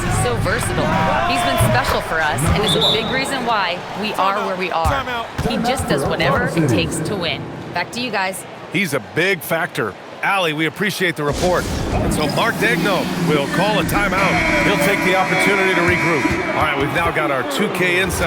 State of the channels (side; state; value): both; identical; correlation 1.00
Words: he's so versatile. He's been special for us and is a big reason why we are where we are. He just does whatever it takes to win. Back to you guys. He's a big factor. Allie, we appreciate the report. And so Mark Daigneault will call a timeout. He'll take the opportunity to regroup. All right, we've now got our 2K